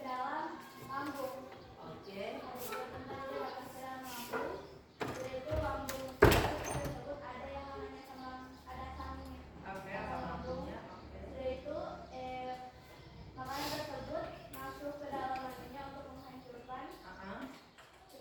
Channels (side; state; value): both; identical; correlation 1.00